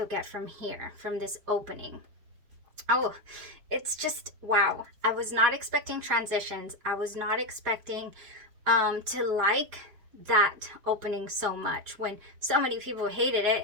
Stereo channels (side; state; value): left; late; 4.8 ms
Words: get from here, from this opening. Oh, it's just wow. I was not expecting transitions. I was not expecting to like that opening so much when so many people hated